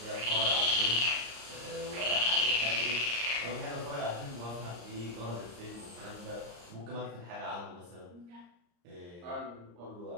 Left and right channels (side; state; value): left; late; 34 ms